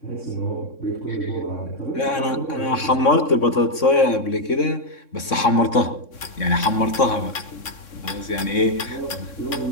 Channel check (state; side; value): late; right; 3.6 ms